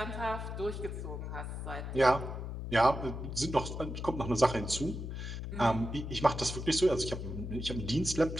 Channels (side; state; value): left; noise; hum, 6 dB below the sound